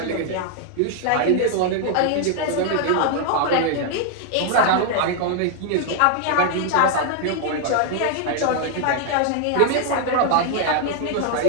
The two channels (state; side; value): different; both; correlation 0.00